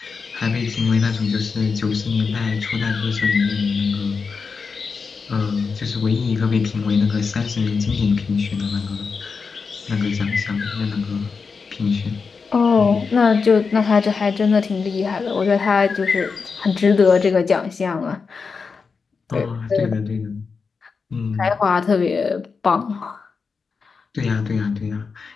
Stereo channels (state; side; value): quieter; right; 5.1 dB